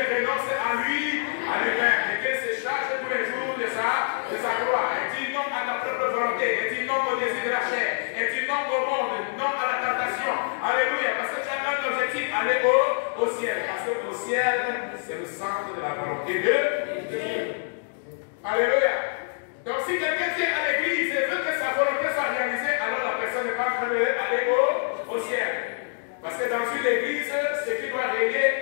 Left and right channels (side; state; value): right; silent; digital silence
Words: à lui-même, et qu'il se charge tous les jours de sa croix. Et dit non à ta propre volonté, et dit non au désir de la chair, et dit non au monde, non à la tentation. Alléluia. Parce que tu as un objectif, aller au ciel. Parce que au ciel, c'est le centre de la volonté de Dieu. Alléluia. Donc si quelqu'un vient à l'église et veut que sa volonté soit pas réalisé, alors la personne n'est pas en train d'aller au ciel. Parce que dans une église, ce qui doit